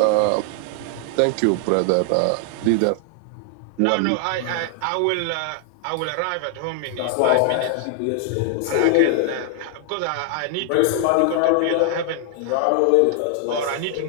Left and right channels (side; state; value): both; different; correlation 0.00